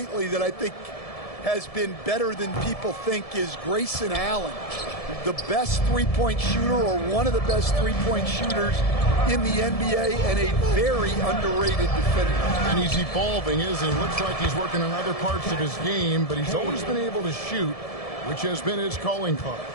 that I think has been better than people think is Grayson Allen, the best three-point shooter or one of the best three-point shooters in the NBA and a very underrated defender. And he's evolving, isn't he? Looks like he's working on other parts of his game, but he's always been able to shoot, which has been his calling card.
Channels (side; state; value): right; late; 1.7 ms